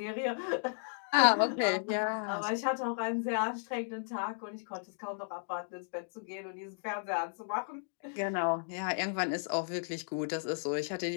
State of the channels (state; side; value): silent; right; digital silence